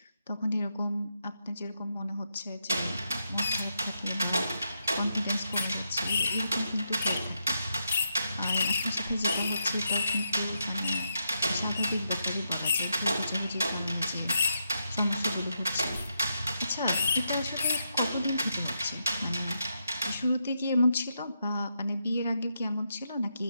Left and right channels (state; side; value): inverted; both; correlation -0.83